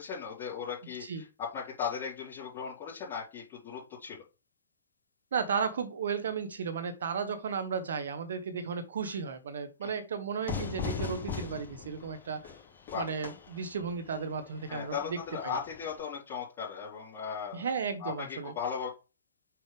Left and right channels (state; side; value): inverted; both; correlation -0.39